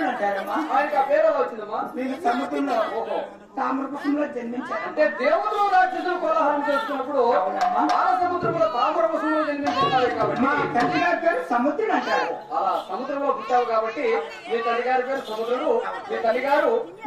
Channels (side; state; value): both; identical; correlation 1.00